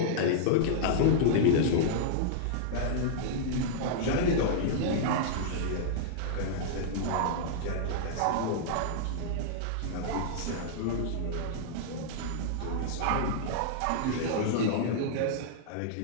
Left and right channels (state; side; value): different; both; correlation -0.02